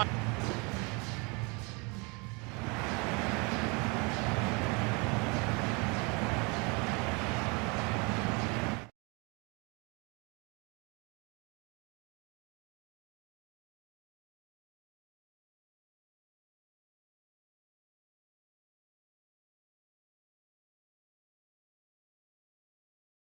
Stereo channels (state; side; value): quieter; left; 29.7 dB